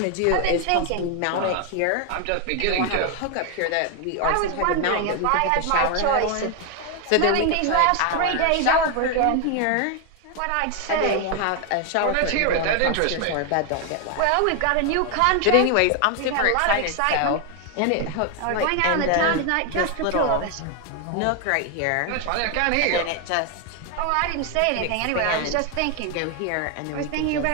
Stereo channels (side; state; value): both; different; correlation 0.01